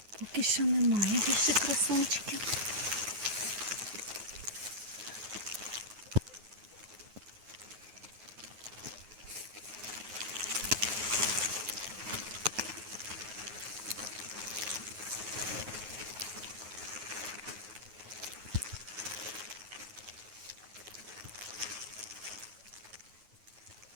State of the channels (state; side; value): late; left; 9.3 ms